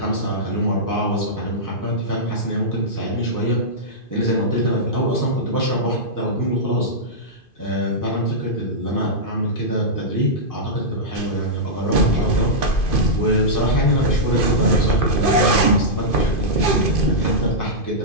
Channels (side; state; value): right; late; 2.5 ms